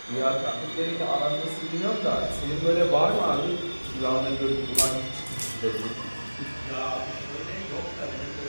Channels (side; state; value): both; inverted; correlation -1.00